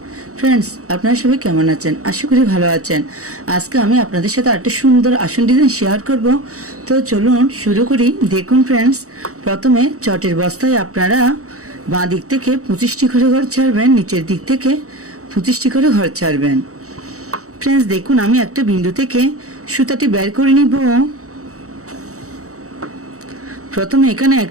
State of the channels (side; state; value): left; late; 0.65 ms